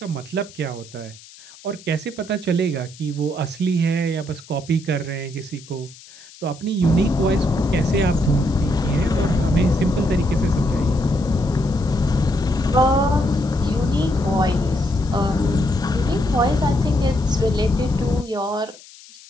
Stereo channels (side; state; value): left; noise; hiss, 21 dB below the sound